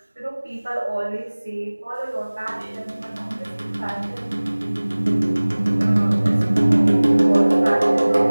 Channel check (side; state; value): both; inverted; correlation -1.00